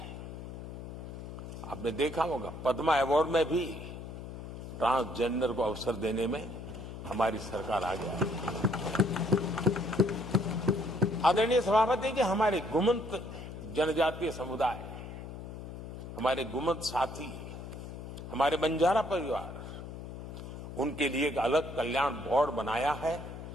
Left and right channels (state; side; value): noise; left; hum, 10 dB below the sound